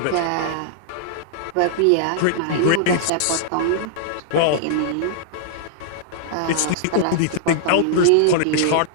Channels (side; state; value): both; different; correlation -0.01